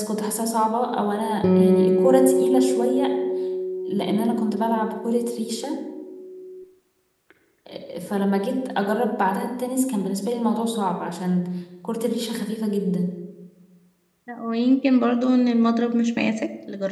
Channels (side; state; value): both; identical; correlation 1.00